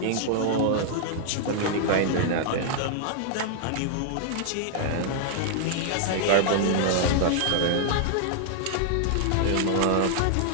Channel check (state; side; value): different; both; correlation -0.01